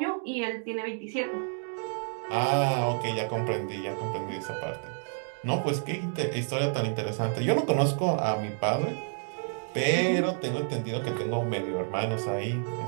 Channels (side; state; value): left; silent; 56 dB below the other